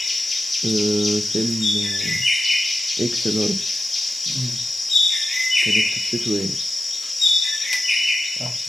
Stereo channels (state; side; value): normal; both; correlation 0.92